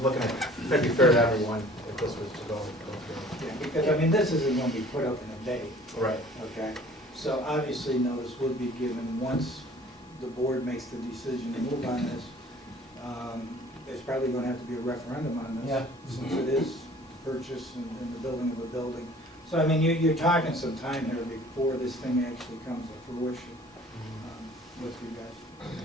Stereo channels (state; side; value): normal; both; correlation 0.50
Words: looking at, trying to be fair to everyone, if this was to go through. Yeah, because, I mean, this isn't gonna be put up in a day, Right. okay? So obviously, notice would be given once the board makes the decision to move on this. There's probably gonna have to be a referendum on this. Yeah. Since it is purchase and the building of a building. So, I mean, you're talking some time here before this thing actually comes to fruition, with you guys.